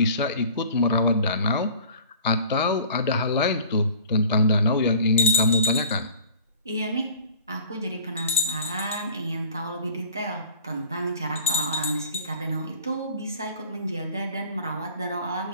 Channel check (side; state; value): both; inverted; correlation -0.46